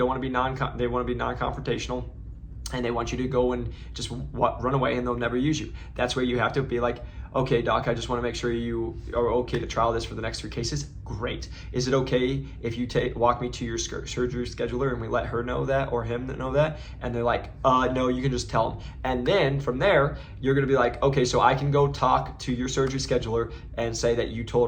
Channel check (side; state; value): both; identical; correlation 1.00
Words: want to be non-confrontational, and they want you to go and just run away, and they'll never use you. That's where you have to be like, okay, doc, I just want to make sure you are okay to trial this for the next 3 cases. Great. Is it okay if you walk me to your surgery scheduler and we let her know that, or him know that? And they're like, no, you can just tell them. And then from there, you're going to be like, okay, so I can go talk to your surgery scheduler and say that you